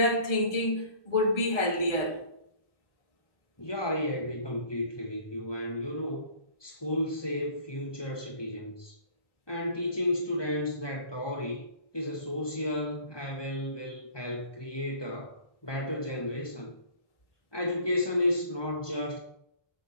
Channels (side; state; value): right; late; 1.2 ms